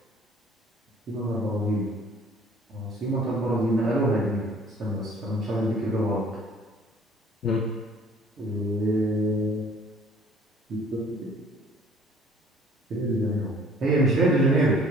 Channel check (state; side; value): normal; both; correlation 0.54